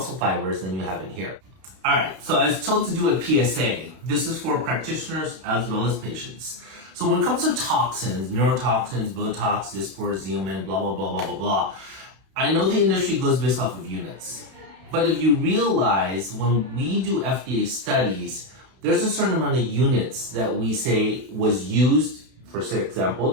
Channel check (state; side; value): late; left; 32 ms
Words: fibers than you have in here. All right, so I was told to do a PSA. This is for practitioners as well as patients. So when it comes to toxins, neurotoxins, Botox, Dysport, Xeomin, blah, blah, blah, blah, blah, blah, I know the industry goes based off of units. But if you realize, when we do FDA studies, there's a certain amount of units that we say was used, for example,